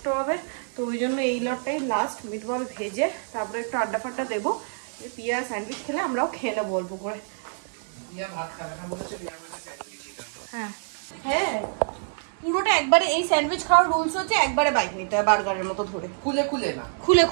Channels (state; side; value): silent; left; digital silence